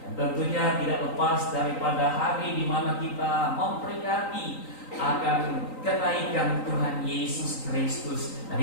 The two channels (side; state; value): right; late; 3.9 ms